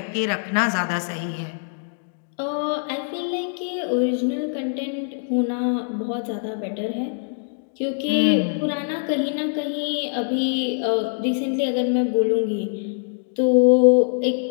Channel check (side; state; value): right; silent; digital silence